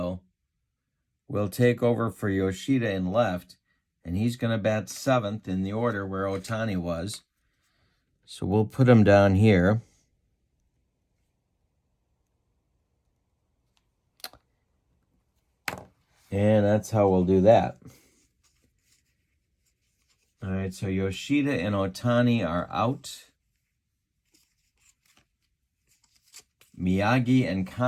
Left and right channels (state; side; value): identical; both; correlation 1.00